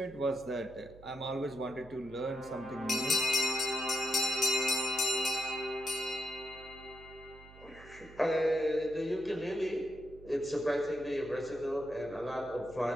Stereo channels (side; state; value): right; noise; hum, 20 dB below the sound